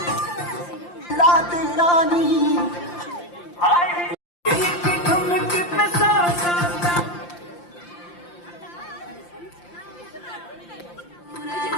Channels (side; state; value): right; late; 5.8 ms